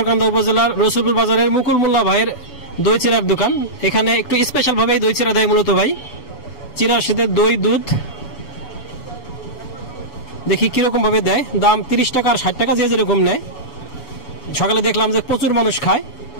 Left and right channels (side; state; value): right; late; 7.1 ms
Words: উপজেলার রসুলপুর বাজারের মুকুল মোল্লা ভাইয়ের দই চিরার দোকান। এখানে একটু স্পেশাল ভাবে দই চিরা দেয় মূলত ভাই। চিরার সাথে দই, দুধ, দেখি কিরকম ভাবে দেয়। দাম 30 টাকা আর 60 টাকা, যে যেরকম নেয়। সকালে দেখলাম যে প্রচুর মানুষ খায়,